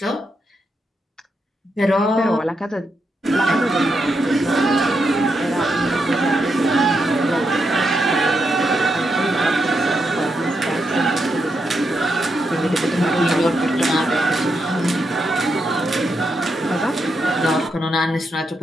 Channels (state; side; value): normal; both; correlation 0.83